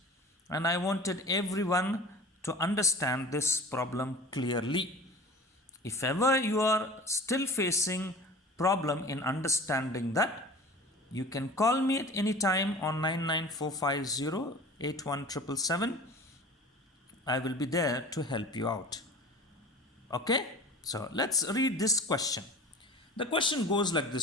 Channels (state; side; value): normal; both; correlation 0.39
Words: and I wanted everyone to understand this problem clearly. If ever you are still facing problem in understanding that, you can call me at any time on 99450 I will be there to help you out. Okay, so let's read this question. The question goes like